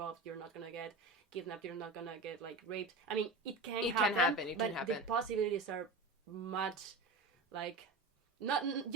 you're not going to get kidnapped, you're not going to get, like, raped. I mean, it can happen. But the possibilities are much, like,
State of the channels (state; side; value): quieter; left; 3.2 dB